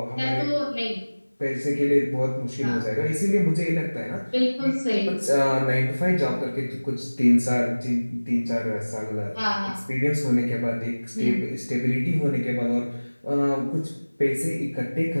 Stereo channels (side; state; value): both; inverted; correlation -1.00